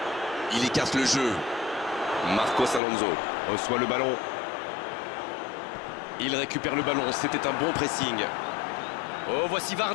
il écarte le jeu. Marcos Alonso reçoit le ballon. Il récupère le ballon, c'était un bon pressing. Oh, voici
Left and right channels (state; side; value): drops out; right; at 2.8 s